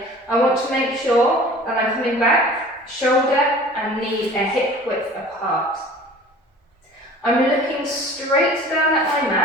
I want to make sure that I'm coming back, shoulder and knee and hip width apart. I'm looking straight down at my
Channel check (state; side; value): normal; both; correlation 0.45